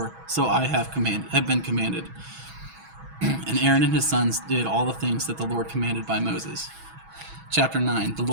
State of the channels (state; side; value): late; left; 6.2 ms